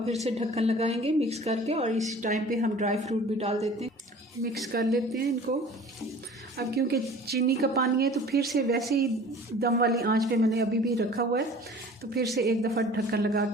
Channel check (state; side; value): normal; both; correlation 0.45